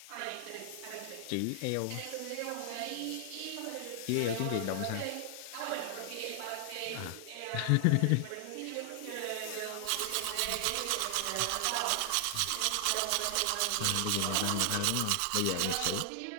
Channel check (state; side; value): different; both; correlation 0.00